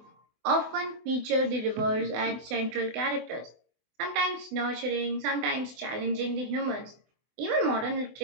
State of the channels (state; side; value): late; left; 24 ms